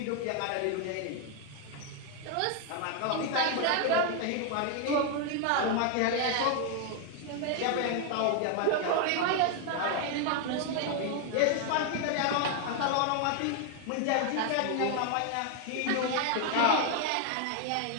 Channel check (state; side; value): different; both; correlation 0.00